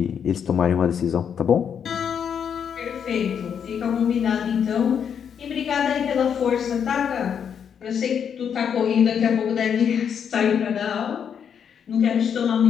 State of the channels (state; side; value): quieter; right; 7.7 dB